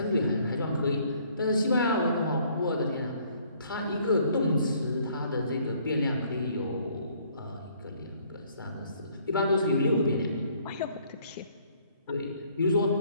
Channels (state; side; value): inverted; both; correlation -0.62